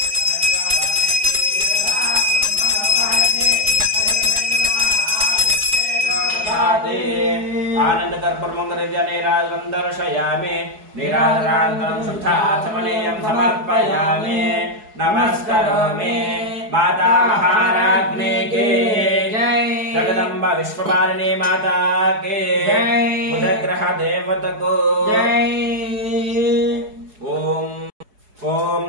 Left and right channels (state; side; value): late; left; 4.7 ms